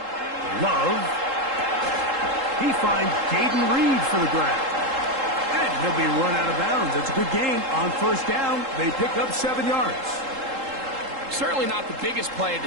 Love. He finds Jaden Reed for the grab. And he'll be run out of bounds. It's a good gain on 1st down. They pick up 7 yards. Certainly not the biggest play of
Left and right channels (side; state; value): left; late; 3.7 ms